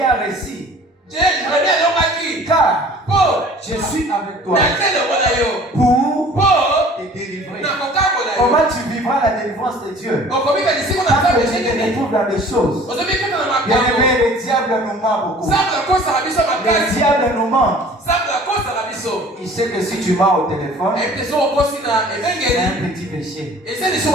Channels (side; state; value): both; normal; correlation 0.49